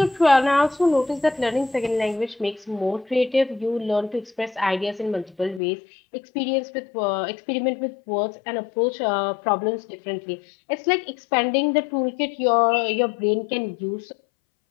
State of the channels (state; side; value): drops out; right; at 5.6 s